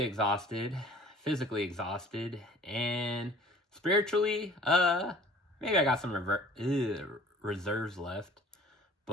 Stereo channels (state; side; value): normal; both; correlation 0.50